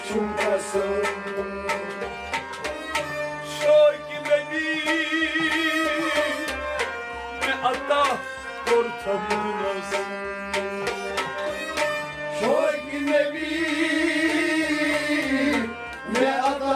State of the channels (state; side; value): identical; both; correlation 1.00